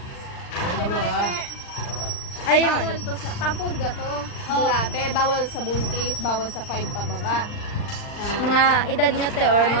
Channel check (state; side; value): late; right; 39 ms